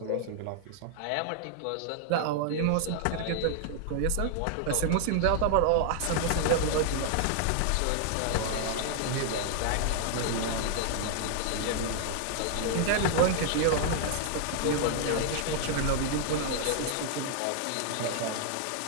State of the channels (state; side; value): different; both; correlation 0.00